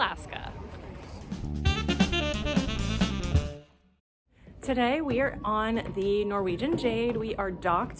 Today we are on the Norwegian Jade. We are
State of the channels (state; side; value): identical; both; correlation 1.00